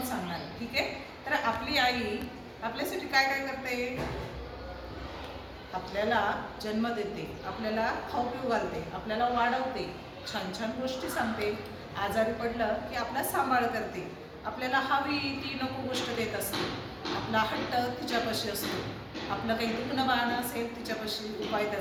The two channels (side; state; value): both; identical; correlation 1.00